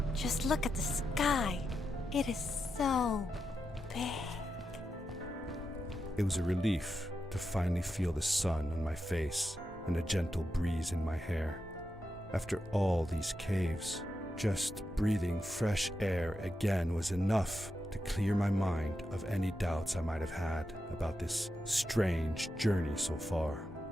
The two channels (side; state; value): both; normal; correlation 0.87